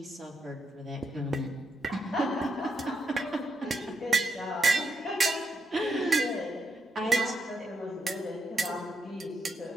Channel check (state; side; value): normal; both; correlation 0.81